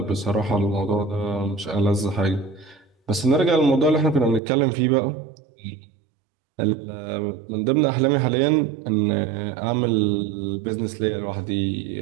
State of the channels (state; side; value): drops out; left; at 4.4 s